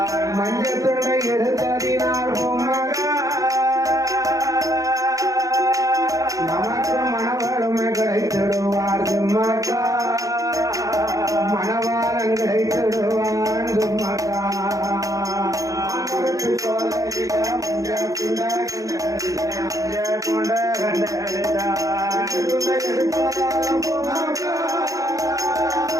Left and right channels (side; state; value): left; late; 0.16 ms